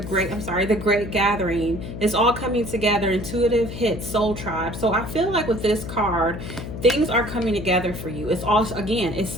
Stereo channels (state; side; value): noise; left; hum, 8 dB below the sound